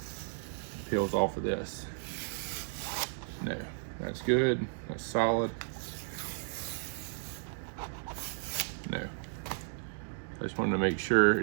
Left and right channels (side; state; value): left; silent; digital silence